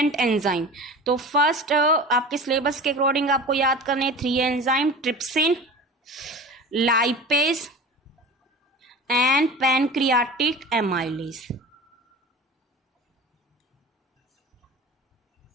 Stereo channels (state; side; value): normal; both; correlation 0.35